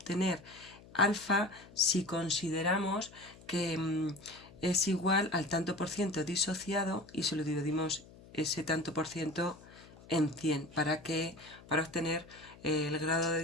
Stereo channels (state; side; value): noise; left; hum, 21 dB below the sound